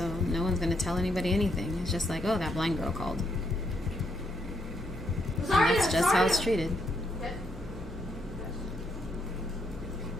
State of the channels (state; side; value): normal; both; correlation 0.76